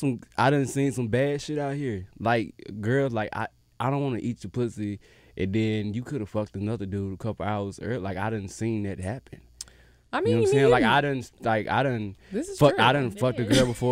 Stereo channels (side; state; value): both; identical; correlation 1.00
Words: I done seen some bad shit out here. Like girls, like I don't want to eat your pussy, and then you could have fucked another dude a couple hours earlier. Like I done seen that happen. I You mean, know what I'm saying? Like I done This is fuck, true. I done fucked a girl